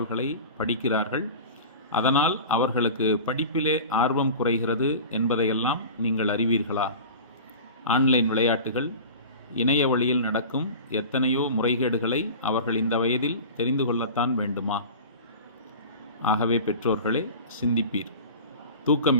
படிக்கிறார்கள். அதனால் அவர்களுக்கு படிப்பிலே ஆர்வம் குறைகிறது என்பதையெல்லாம் நீங்கள் அறிவீர்களா? ஆன்லைன் விளையாட்டுகள், இணைய வழியில் நடக்கும் எத்தனையோ முறைகேடுகளை அவர்கள் இந்த வயதில் தெரிந்து கொள்ளத்தான் வேண்டுமா? ஆகவே பெற்றோர்களே, சிந்திப்பீர்.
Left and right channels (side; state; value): both; inverted; correlation -0.35